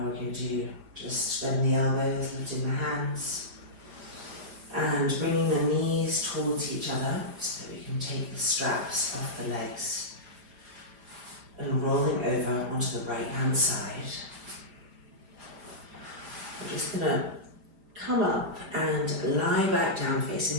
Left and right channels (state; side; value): late; left; 4.9 ms